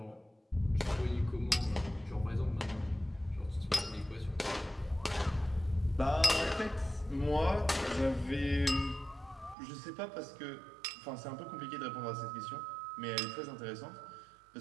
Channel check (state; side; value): drops out; left; at 9.6 s